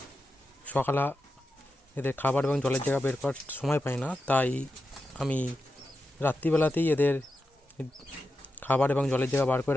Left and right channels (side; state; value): both; normal; correlation 0.89